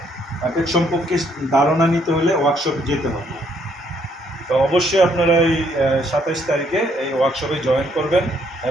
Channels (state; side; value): normal; both; correlation 0.69